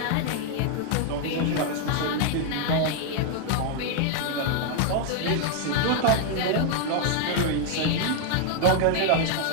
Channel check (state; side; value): different; both; correlation 0.00